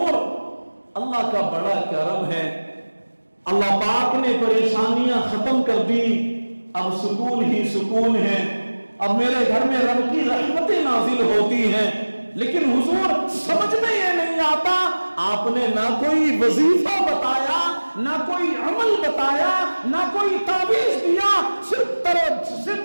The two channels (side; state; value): both; inverted; correlation -1.00